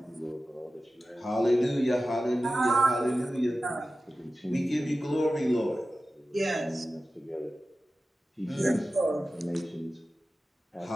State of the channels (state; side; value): normal; both; correlation 0.94